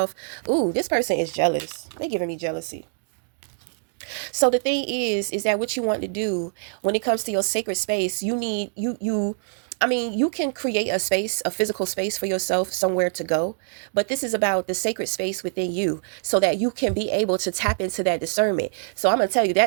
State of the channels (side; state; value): left; silent; digital silence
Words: Ooh, this person is jealous. They're giving me jealousy. So the thing is that what you want to do when it comes to your sacred space, you need I mean, you can create a space, a physical space for yourself, somewhere to go. But this is about the sacred space within you so that you can be able to tap into that discernment. So I'm going to tell you